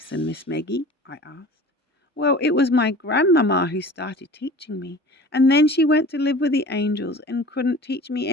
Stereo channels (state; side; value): normal; both; correlation 0.41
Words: Miss Maggie?" I asked. "Well, it was my grandmamma who started teaching me, and then she went to live with the angels and couldn't teach me